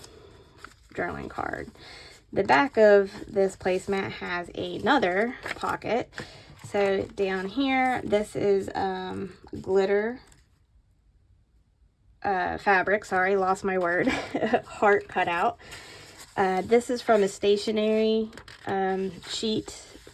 journaling card. The back of this placemat has another pocket. So down here, this is glitter fabric, sorry, lost my word, heart cutout. This is from a stationery sheet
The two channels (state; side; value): identical; both; correlation 1.00